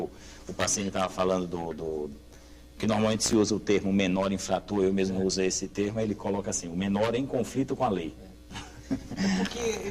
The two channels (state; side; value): identical; both; correlation 1.00